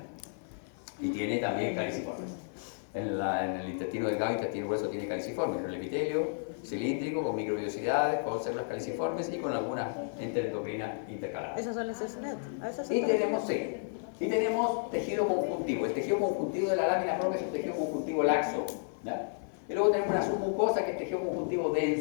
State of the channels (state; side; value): silent; right; 56 dB below the other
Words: y tiene también caliciformes. En el intestino delgado, intestino grueso tiene caliciformes, el epitelio cilíndrico con microvellosidades, con células caliciformes y con algunas enteroendocrinas intercaladas. Esas son las SNET. Y tenemos tejido conjuntivo. El tejido conjuntivo de la lámina propia es un tejido conjuntivo laxo, ¿ya? Y luego tenemos una submucosa que es tejido conjuntivo